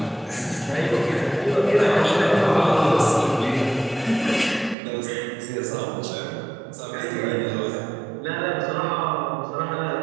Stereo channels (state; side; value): drops out; left; at 4.8 s